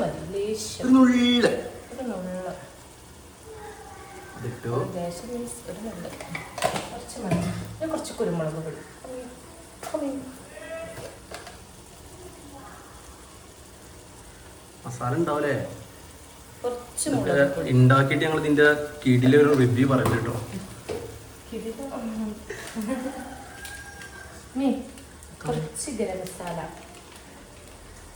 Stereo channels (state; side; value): identical; both; correlation 1.00